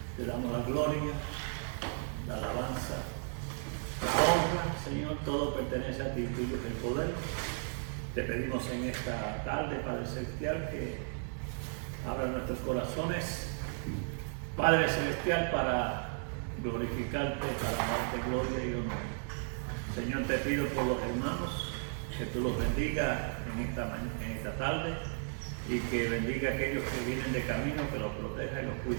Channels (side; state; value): left; silent; 55 dB below the other